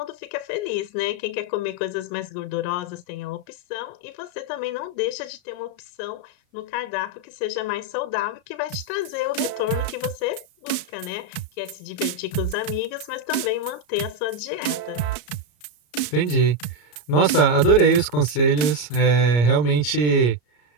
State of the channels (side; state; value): right; late; 34 ms